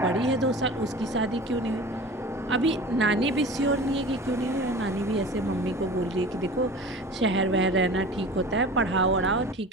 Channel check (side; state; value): both; normal; correlation 0.38